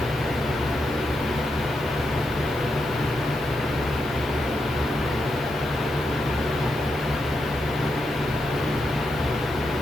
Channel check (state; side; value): normal; both; correlation 0.84